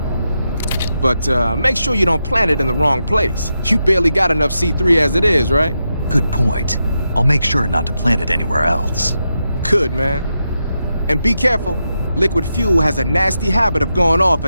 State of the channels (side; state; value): both; inverted; correlation -0.86